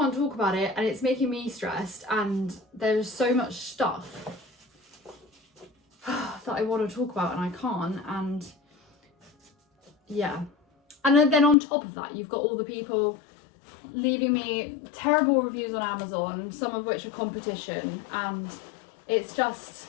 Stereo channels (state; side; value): drops out; right; at 11.6 s